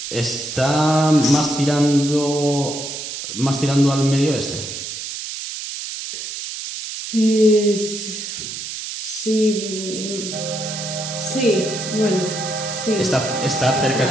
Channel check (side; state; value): right; noise; hiss, 7 dB below the sound